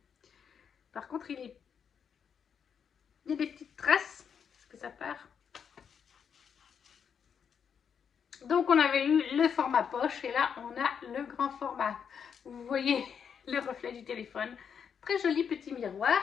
Par contre, il y a des petites traces. Est-ce que ça part? Donc, on avait eu le format poche. Et là, on a le grand format. Vous voyez le reflet du téléphone. Très joli petit miroir.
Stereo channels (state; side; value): quieter; right; 7.3 dB